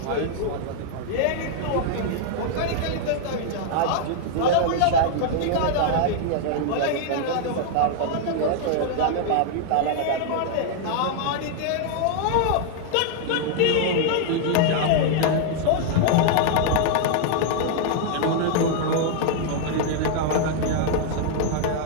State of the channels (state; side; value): different; both; correlation 0.00